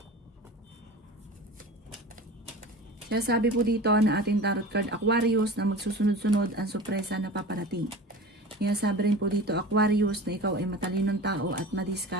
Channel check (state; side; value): normal; both; correlation 0.35